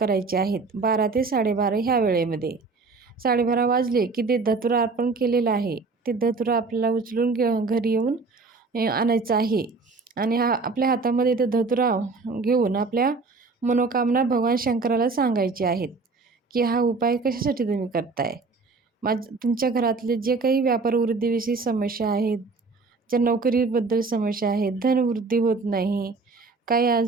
आहेत 12 ते 12:30 ह्या वेळेमध्ये. 12:30 वाजले की ते धतुरा अर्पण केलेलं आहे, ते धतुरा आपल्याला उचलून घरी येऊन आणायचं आहे आणि आपल्या हातामध्ये ते धतुरा घेऊन आपल्या मनोकामना भगवान शंकराला सांगायचे आहेत की हा उपाय कशासाठी तुम्ही करताय. तुमच्या घरातले जे काही व्यापार वृद्धीविषयी समस्या आहेत, ज्या नोकरीबद्दल समस्या आहेत, धनवृद्धी होत नाही, काही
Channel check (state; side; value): quieter; left; 4.1 dB